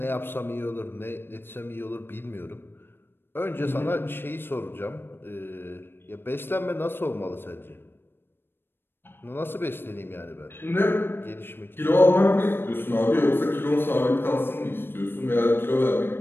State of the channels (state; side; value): late; right; 0.10 ms